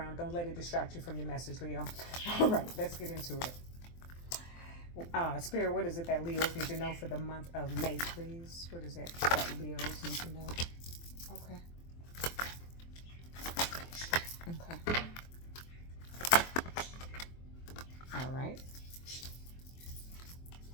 Don't let it distract you from your message, Leo. All right, let's get into it. Spirit, what is it that Leos need to know for the month of May, please? What is it that Leos need to know? Okay. Okay. All right.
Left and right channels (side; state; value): right; late; 23 ms